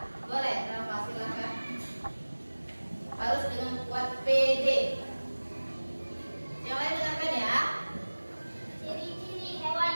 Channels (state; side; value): inverted; both; correlation -1.00